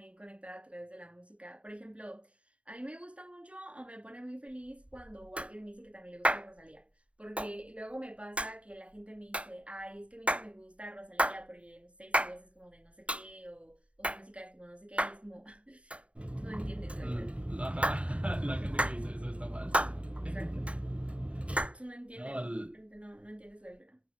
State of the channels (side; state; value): left; late; 0.063 ms